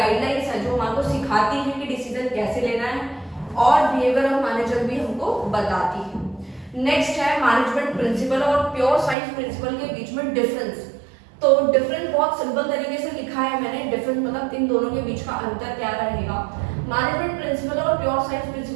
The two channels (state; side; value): drops out; left; at 9.2 s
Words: है जो हमारे को सिखाती है कि डिसीजन कैसे लेना है, और बिहेवियर ऑफ मैनेजर भी हमको बताती है। नेक्स्ट है मैनेजमेंट प्रिंसिपल और प्योर साइंस प्रिंसिपल के बीच में डिफरेंस। तो डिफरेंस बहुत सिंपल तरीके से लिखा है मैंने। डिफरेंस मतलब इन दोनों के बीच का अंतर क्या रहेगा। मैनेजमेंट प्रिंसिपल और प्योर साइंस